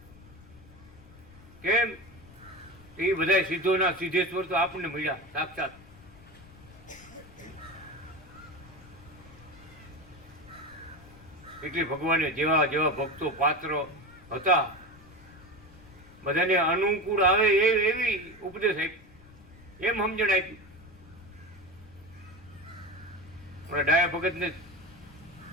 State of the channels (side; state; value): left; noise; rumble, 21 dB below the sound